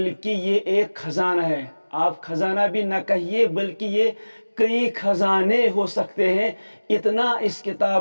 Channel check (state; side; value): inverted; both; correlation -1.00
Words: یہ ایک خزانہ ہے. آپ خزانہ بھی نہ کہیے بلکہ یہ کئی خزانے ہو سکتے ہیں، اتنا اس